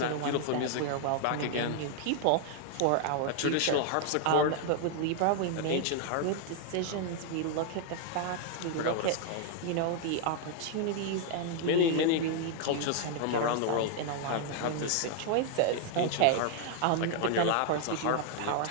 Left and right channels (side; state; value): both; different; correlation 0.00